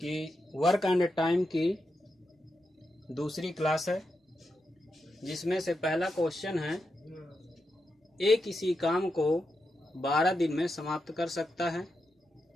वर्क एंड टाइम की दूसरी क्लास है, जिसमें से पहला क्वेश्चन है ए किसी काम को 12 दिन में समाप्त कर सकता है,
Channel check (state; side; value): normal; both; correlation 0.86